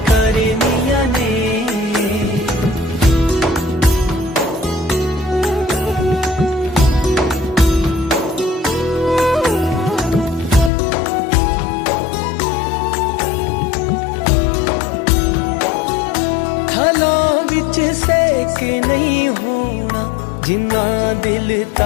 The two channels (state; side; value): drops out; right; at 10.7 s